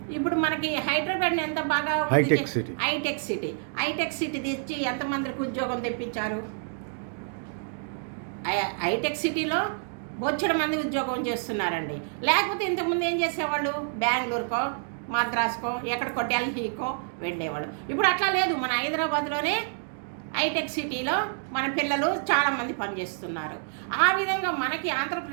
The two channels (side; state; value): left; silent; 59 dB below the other